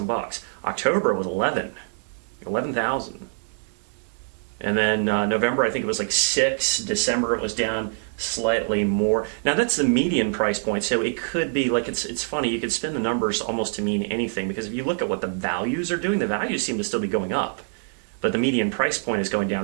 October was 11,000. And then November, I think it was like 6. December, it was down slightly more. Now that's the median price point, so it could be like it's funny. You could spin the numbers almost to mean anything, because if you look at what the values are doing, the values seem to still be going up, but the median price point is going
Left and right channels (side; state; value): left; silent; 62 dB below the other